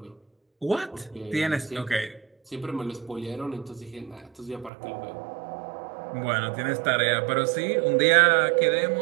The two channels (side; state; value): left; drops out; at 4.7 s